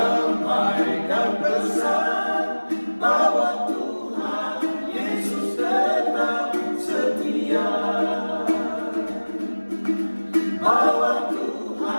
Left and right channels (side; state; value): both; inverted; correlation -1.00